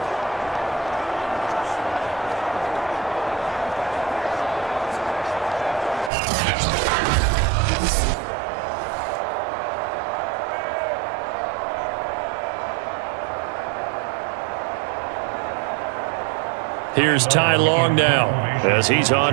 Here's Ty Long now as he's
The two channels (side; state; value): left; drops out; at 6.1 s